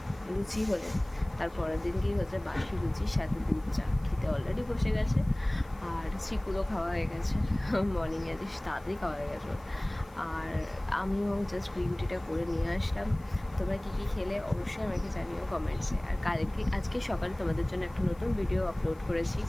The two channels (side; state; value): left; noise; hiss, 28 dB below the sound